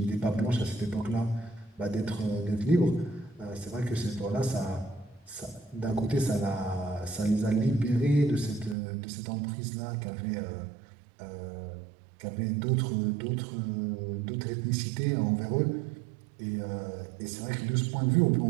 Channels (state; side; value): drops out; left; at 8.8 s